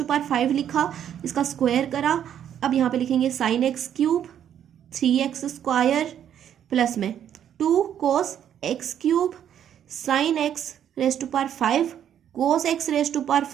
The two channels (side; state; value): left; quieter; 9.8 dB